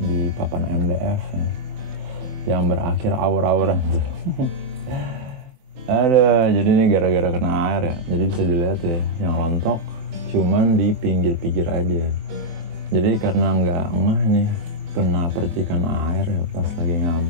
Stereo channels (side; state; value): left; late; 23 ms